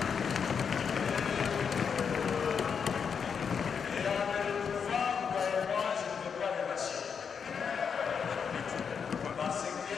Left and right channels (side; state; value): right; quieter; 6.5 dB